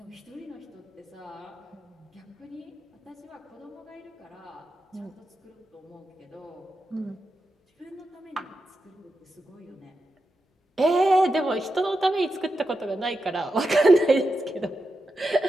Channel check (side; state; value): both; normal; correlation 0.88